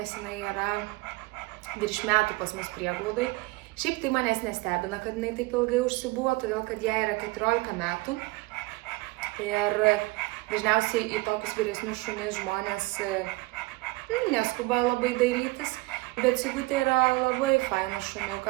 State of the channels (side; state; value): left; quieter; 22.8 dB